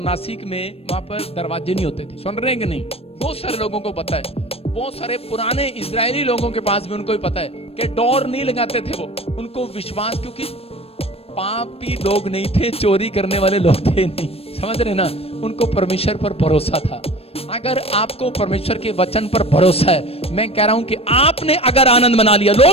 नासिक में वहां पर दरवाजे नहीं होते थे। सुन रहे हैं कि नहीं? बहुत सारे लोगों को पता है, बहुत सारे पुराने इजरायली लोगों के पास भी उनको भी पता है कि डोर नहीं लगाते थे वो। उनको विश्वास, क्योंकि पापी लोग नहीं थे, चोरी करने वाले लोग थे नहीं। समझ रहे ना? उनको परमेश्वर पर भरोसा था। अगर आपको परमेश्वर के वचन पर भरोसा है, मैं कह रहा हूं कि आपने अगर आनंद मना लिया।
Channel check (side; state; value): right; late; 0.28 ms